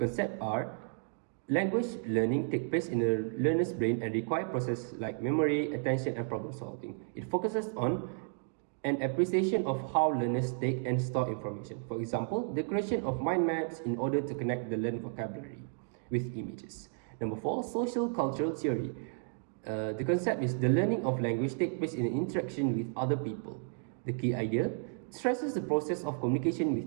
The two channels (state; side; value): silent; left; 56 dB below the other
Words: are Language learning takes place in a learner's brain and requires processes like memory, attention, and problem solving. It focuses on an appreciation of how learners take and store information. For example, the creation of mind maps in order to connect the learned vocabulary with images. Number 4, social cultural theory. The concept is the learning of language takes place in interaction with other people. The key idea stresses the process of communication